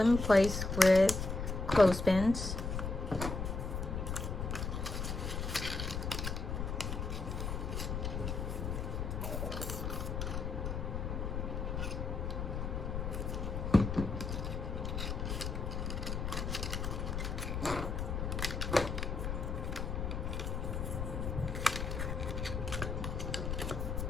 in place with clothespins.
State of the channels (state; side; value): noise; left; rumble, 2 dB below the sound